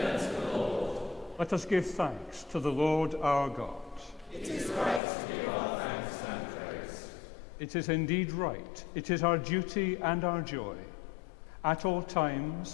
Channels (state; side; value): drops out; right; at 5.0 s